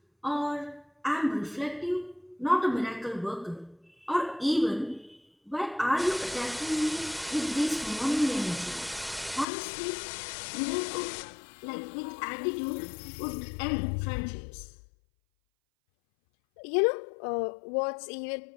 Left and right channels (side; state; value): right; drops out; at 9.5 s